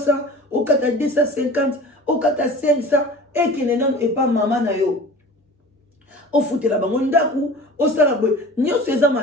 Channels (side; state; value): both; normal; correlation 0.40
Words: au 4 à 250, au 4 à 500 et que nenan et pas maman na yo. O foute la bango ndaku, o sala boy. Nyo se za